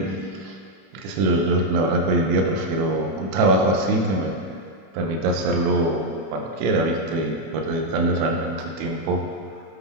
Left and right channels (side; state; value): left; late; 31 ms